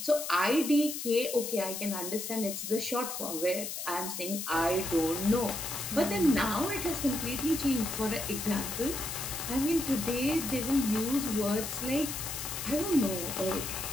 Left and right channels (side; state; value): left; noise; hiss, 6 dB below the sound